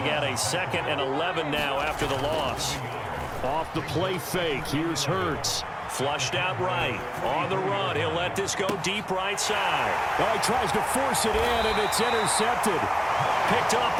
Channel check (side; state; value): both; identical; correlation 1.00